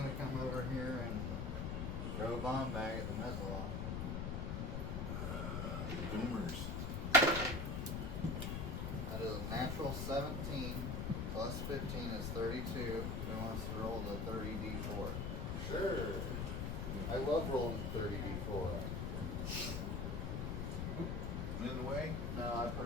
come over here and throw a bomb bag at the Mezzalon. Boomers. That is a natural 17 plus 15 is 32. Who wants to roll the 30d4? Sure. I love rolling 30d4. In the way? No, I put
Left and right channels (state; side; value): noise; left; rumble, 1 dB below the sound